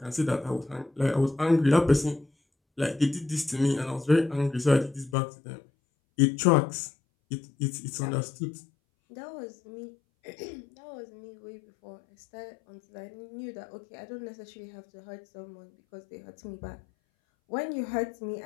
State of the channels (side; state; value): right; drops out; at 5.2 s